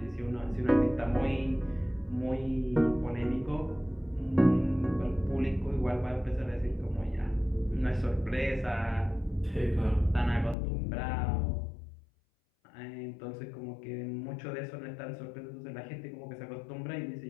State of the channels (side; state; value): right; drops out; at 10.6 s